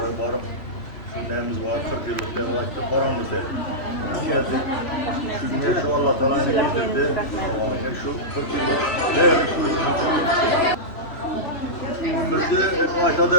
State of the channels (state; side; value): late; right; 3.1 ms